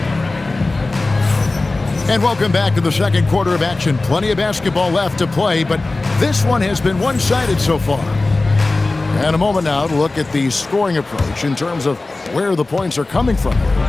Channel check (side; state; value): right; quieter; 3.2 dB